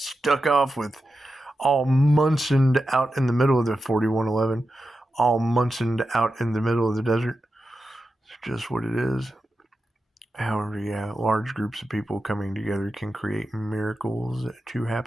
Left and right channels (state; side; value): normal; both; correlation 0.90